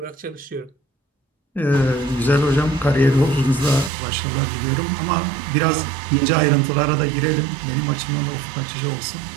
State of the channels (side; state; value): left; drops out; at 3.9 s